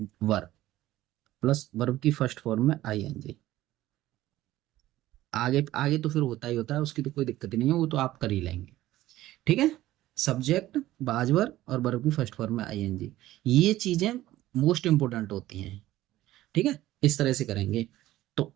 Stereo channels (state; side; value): quieter; left; 15.4 dB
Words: वर प्लस वर्ब की फर्स्ट फॉर्म में ING। आगे आगे तो फिर होता ही होता है, उसकी तो कोई दिक्कत ही नहीं है, वो तो आप कर ही लेंगे। ठीक है। सब्जेक्ट, बाजवर और वर्ब की फर्स्ट फॉर्म में ING, ये चीजें मोस्ट इंपोर्टेंट होती हैं। ठीक है, इस तरह से करेंगे। तो